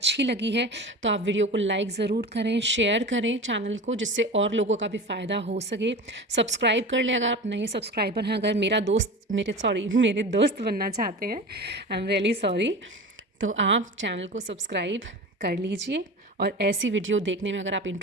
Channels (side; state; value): both; normal; correlation 0.32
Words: लगी है तो आप वीडियो को लाइक ज़रूर करें, शेयर करें चैनल को, जिससे और लोगों का भी फ़ायदा हो सके। सब्सक्राइब कर लें अगर आप नए सब्सक्राइबर हैं। अगर मेरे दोस्त बनना चाहते हैं, आई एम रियली सॉरी, तो आप चैनल को सब्सक्राइब कर लीजिए। और ऐसी वीडियो देखने में अगर आप